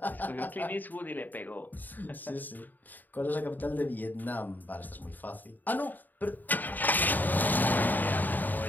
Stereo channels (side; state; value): right; late; 0.087 ms